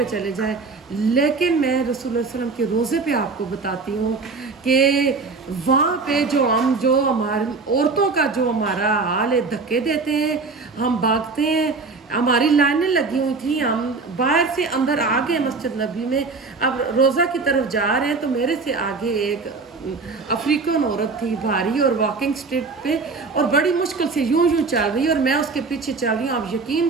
چلے جائیں، لیکن میں رسول اللہ علیہ وسلم کے روزے پہ آپ کو بتاتی ہوں کہ وہاں پہ جو ہماری عورتوں کا جو ہمارا حال ہے، دھکے دیتے ہیں، ہم بھاگتے ہیں، ہماری لائنیں لگی ہوئی تھیں، ہم باہر سے اندر آ گئے مسجد نبی میں، اب روزہ کی طرف جا رہے ہیں، تو میرے سے آگے ایک افریقن عورت تھی بھاری اور واکنگ اسٹرٹ پہ، اور بڑی مشکل سے یوں چل رہی، اور میں اس کے پیچھے چل رہی ہوں۔ آپ یقین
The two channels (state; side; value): quieter; left; 4.2 dB